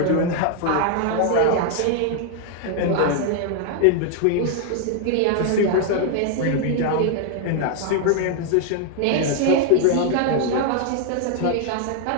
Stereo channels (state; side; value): different; both; correlation 0.00